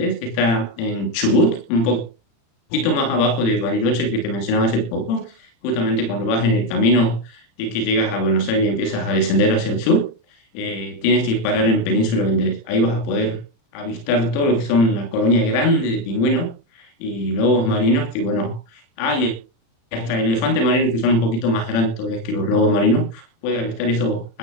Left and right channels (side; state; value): right; late; 35 ms